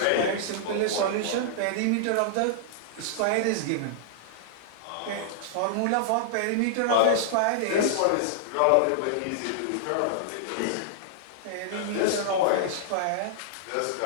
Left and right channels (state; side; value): different; both; correlation -0.01